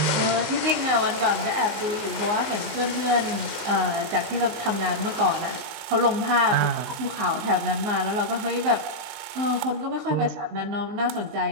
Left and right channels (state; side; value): late; left; 19 ms